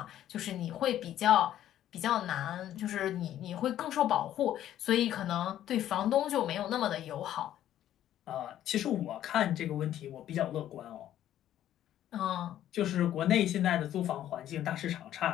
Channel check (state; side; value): quieter; right; 11.9 dB